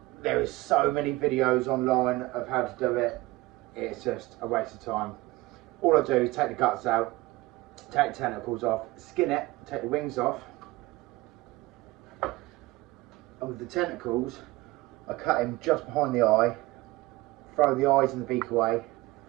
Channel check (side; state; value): left; quieter; 20.2 dB